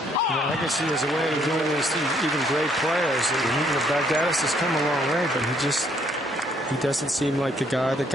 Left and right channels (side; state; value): both; normal; correlation 0.67